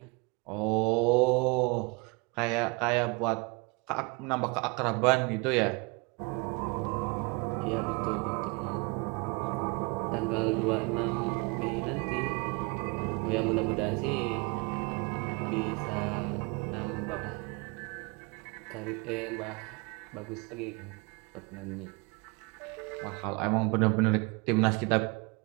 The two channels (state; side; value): quieter; left; 29.4 dB